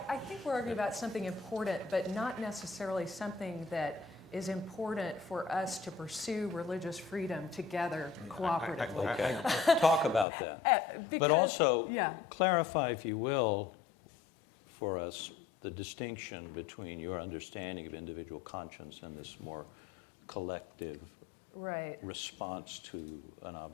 I think we're arguing about something important, but not necessarily something that is important for us to pursue religious freedom together cooperatively. Okay, talk about that. But also, clarify, if you will, for us, the distinction between your understanding of individual conscience and this more collective response to an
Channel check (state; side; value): drops out; right; at 10.2 s